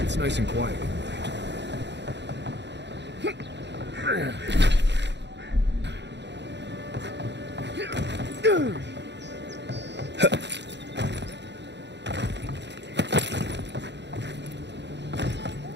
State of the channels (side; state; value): left; late; 0.51 ms